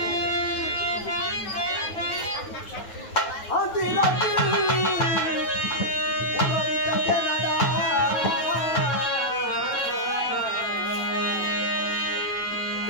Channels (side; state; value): right; late; 9.2 ms